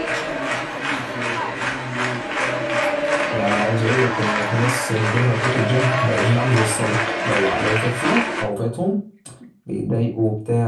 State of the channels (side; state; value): both; identical; correlation 1.00